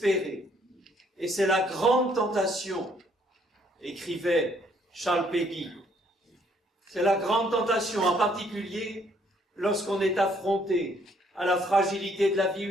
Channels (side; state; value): both; normal; correlation 0.66